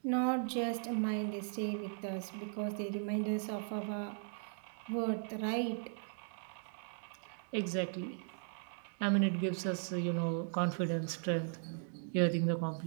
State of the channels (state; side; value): silent; left; digital silence